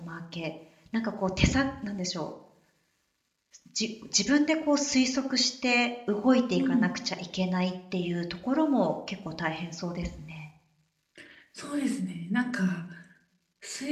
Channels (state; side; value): identical; both; correlation 1.00